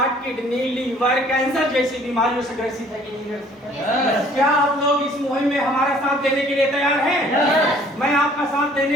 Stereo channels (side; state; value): both; normal; correlation 0.56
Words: kidney, liver, cancer जैसी बीमारियों से ग्रसित है कि नहीं ग्रसित? क्या आप लोग इस मुहिम में हमारा साथ देने के लिए तैयार हैं? मैं आपका साथ